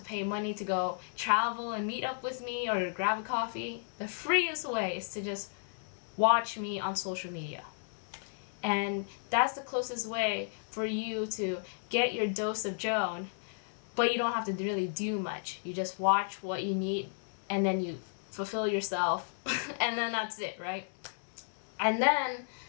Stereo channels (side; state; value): right; silent; digital silence